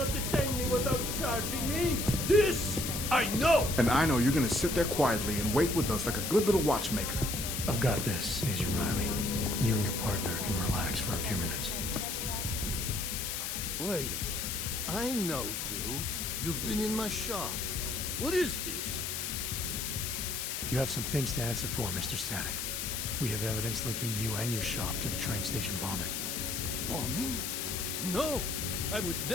detain me without charging me. This I know. And I know you're gonna sit there quietly and wait with us like a good little watchmaker. I've got this, Agent Riley. You and your partner can relax for a few minutes. deadly outbreaks. Wait a minute. I know you. You've been in my shop. What is this? You have some things to answer for, Mr. Static. We have evidence linking you and your shop to the train station bombing. Bombing? No! I would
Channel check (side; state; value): left; noise; hiss, 3 dB below the sound